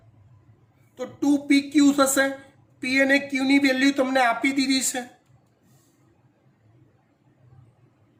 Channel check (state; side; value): identical; both; correlation 1.00